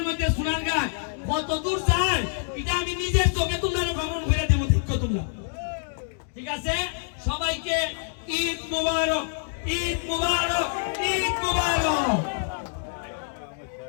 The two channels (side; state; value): right; silent; digital silence